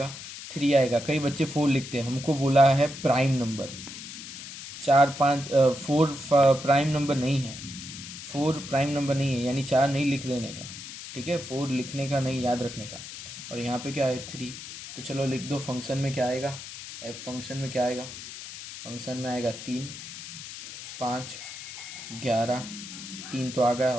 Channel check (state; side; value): noise; left; hiss, 11 dB below the sound